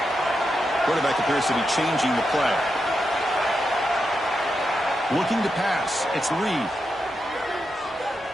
Quarterback appears to be changing the play. Looking to pass. It's Reed.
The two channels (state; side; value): normal; both; correlation 0.86